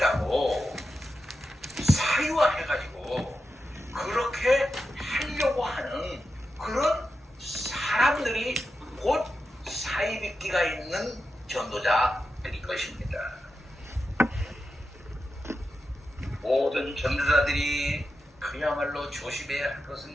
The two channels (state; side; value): normal; both; correlation 0.90